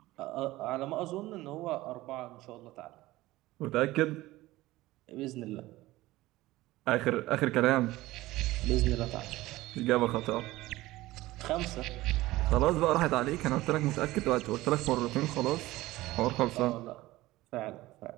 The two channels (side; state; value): left; quieter; 17.9 dB